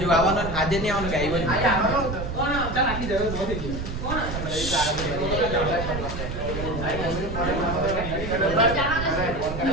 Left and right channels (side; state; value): right; noise; rumble, 6 dB below the sound